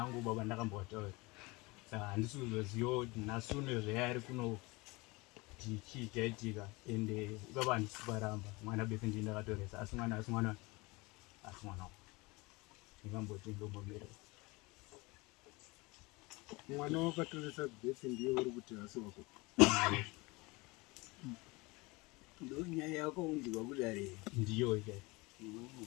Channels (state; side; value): quieter; right; 24.5 dB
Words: baba ndakambotaura saka handisi kuzoziva kuti nasuno zvayari kuno kuti chii chaitika ende ipapo handisi paramba mwana bese ndii ndakatoresa asi mwana ndingamboti ndombomira mwana wakatoresa bese ndiye uri kuti hasi wako ndo nyaya yako unzwa kuDare ndiyo